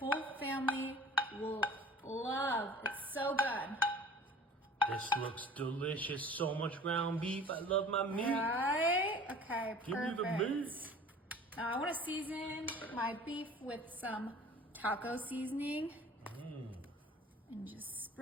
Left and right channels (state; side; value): normal; both; correlation 0.46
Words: family will love. It's so good. This looks delicious. So much ground beef. I love my meat. Right? Okay, perfect. Give me the meat. Now I want to season my beef with some taco seasoning. And just